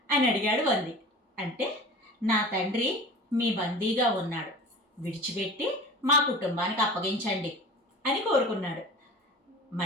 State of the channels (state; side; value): normal; both; correlation 0.37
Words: అని అడిగాడు వంది. అంటే నా తండ్రి మీ బందీగా ఉన్నాడు, విడిచిపెట్టి మా కుటుంబానికి అప్పగించండి అని కోరుకున్నాడు.